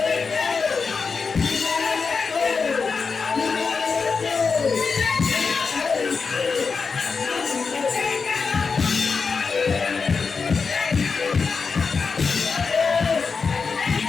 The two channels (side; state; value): right; quieter; 5.0 dB